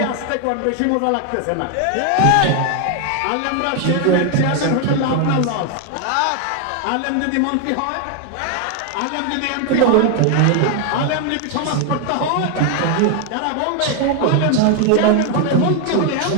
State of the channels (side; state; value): both; different; correlation 0.00